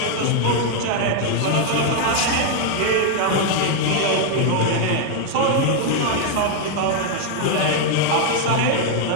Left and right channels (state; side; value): different; both; correlation 0.00